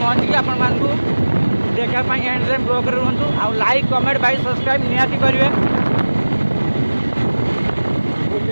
आपण देखापी एंड टाइम ब्लॉग रुहतु आउ लाइक कमेंट भाई सब्सक्राइब निहाती करेंगे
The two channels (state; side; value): inverted; both; correlation -1.00